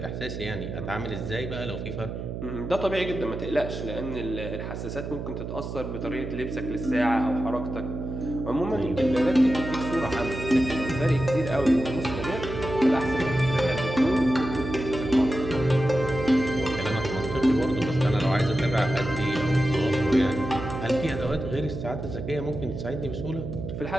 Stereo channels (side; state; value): right; noise; hum, 6 dB below the sound